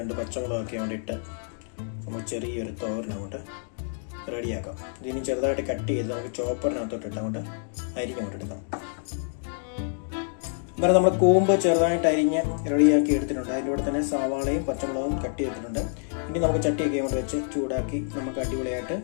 പച്ചമുളകൊക്കെ വേണ്ടിയിട്ട് നമ്മൾ ചെറിയൊരു തോരൻ അങ്ങോട്ട് റെഡിയാക്കാം. ഇതിന് ചെറുതായിട്ട് കട്ട് ചെയ്ത് നമുക്ക് ചോപ്പറിനകത്തോട്ടിട്ട് അങ്ങോട്ട് അരിഞ്ഞുകൊണ്ടെടുക്കാം. അന്നേരം നമ്മൾ കൂമ്പ് ചെറുതായിട്ട് അരിഞ്ഞ് റെഡിയാക്കി എടുത്തിട്ടുണ്ട്. അതിൻ്റെ കൂടെ തന്നെ സവാളയും പച്ചമുളകും കട്ട് ചെയ്തിട്ടുണ്ട്. ഇനി നമുക്ക് ചട്ടിയൊക്കെ കൊണ്ട് വെച്ച് ചൂടാക്കി നമുക്ക് അടിപൊളിയായിട്ട്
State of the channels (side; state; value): right; silent; digital silence